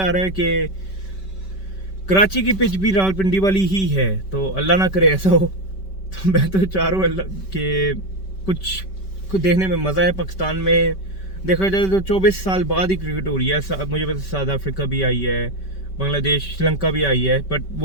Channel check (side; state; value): right; late; 5.2 ms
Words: रहा है कि कराची की पिच भी रावलपिंडी वाली ही है, तो अल्लाह ना करे ऐसा हो। तो मैं तो चाह रहा हूँ अल्लाह के कुछ देखने में मज़ा है। पाकिस्तान में देखा जाए तो 24 साल बाद ही क्रिकेट हो रही है। मुझे पता साउथ अफ्रीका भी आई है, बांग्लादेश, श्रीलंका भी आई है, बट